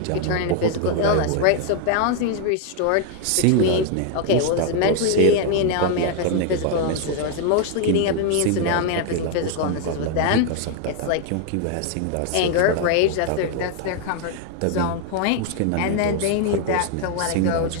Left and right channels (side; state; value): both; different; correlation 0.00